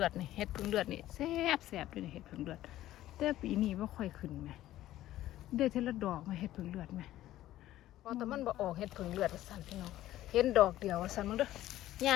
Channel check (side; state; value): right; quieter; 14.2 dB